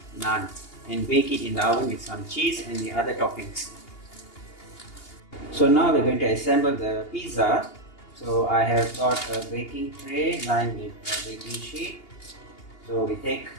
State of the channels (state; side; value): late; right; 2.8 ms